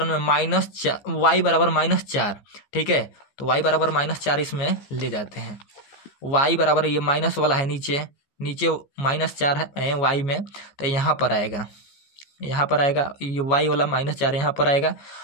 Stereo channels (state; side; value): late; right; 15 ms